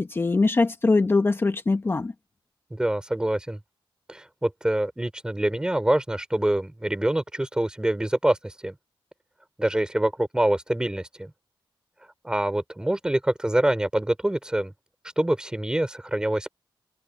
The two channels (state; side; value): normal; both; correlation 0.96